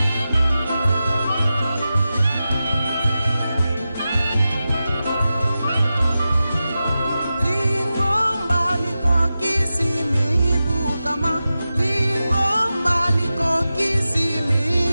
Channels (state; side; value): inverted; both; correlation -0.93